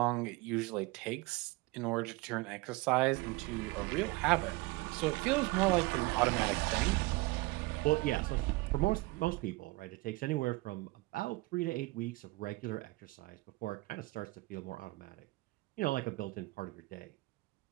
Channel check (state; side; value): quieter; left; 22.4 dB